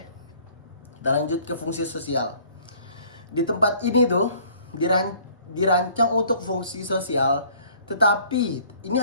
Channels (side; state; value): both; inverted; correlation -0.56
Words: kita lanjut ke fungsi sosial. Di tempat ini tuh dirancang untuk fungsi sosial, tetapi ini